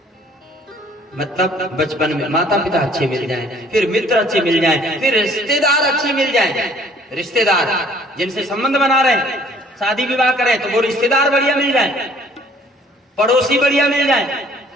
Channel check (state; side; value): normal; both; correlation 0.57